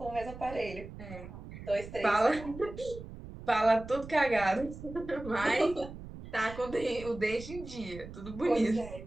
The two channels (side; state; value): right; noise; rumble, 13 dB below the sound